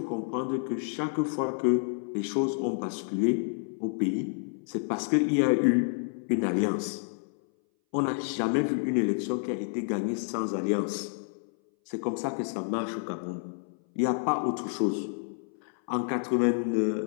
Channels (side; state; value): right; silent; 58 dB below the other